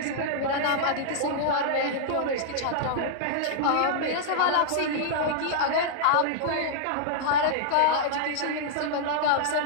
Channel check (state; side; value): different; both; correlation -0.01